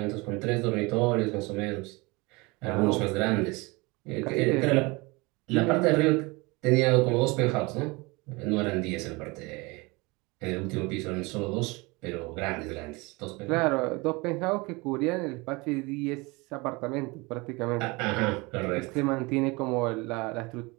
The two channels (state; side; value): quieter; left; 25.4 dB